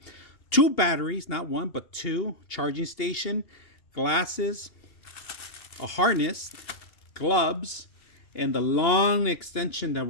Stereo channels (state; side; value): late; right; 2.7 ms